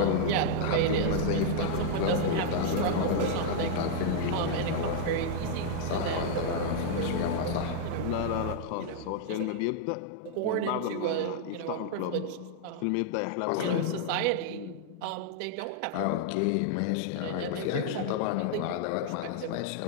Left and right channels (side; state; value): both; different; correlation -0.01